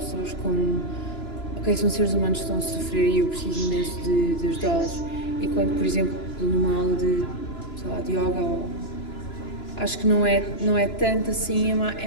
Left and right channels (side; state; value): right; late; 2.9 ms